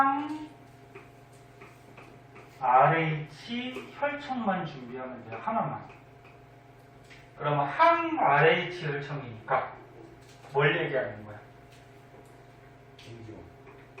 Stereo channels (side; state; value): both; identical; correlation 1.00